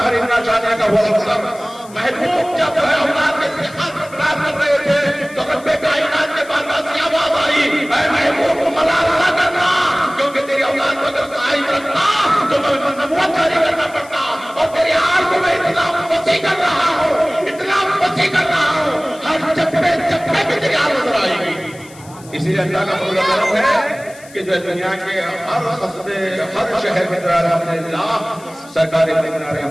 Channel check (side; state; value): left; noise; hiss, 22 dB below the sound